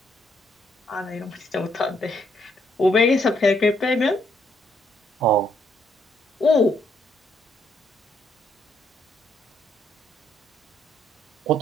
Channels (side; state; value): both; normal; correlation 0.72